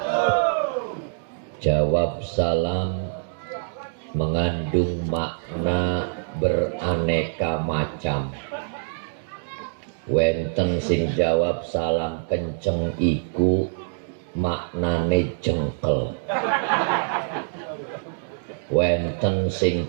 Jawab salam mengandung makna beraneka macam. Wenten sing jawab salam kenceng iku maknane jengkel. Wenten sing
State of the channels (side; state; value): left; silent; digital silence